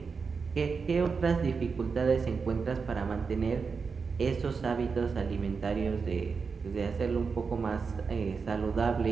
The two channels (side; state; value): left; quieter; 5.2 dB